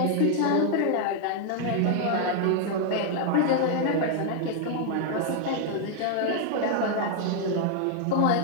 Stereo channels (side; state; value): both; different; correlation 0.00